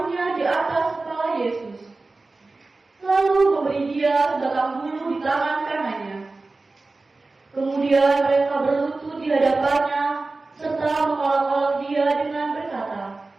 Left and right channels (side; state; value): left; quieter; 3.5 dB